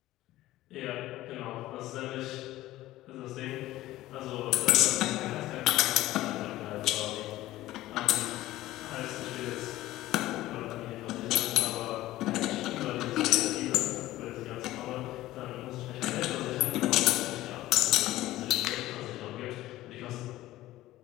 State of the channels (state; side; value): quieter; right; 16.0 dB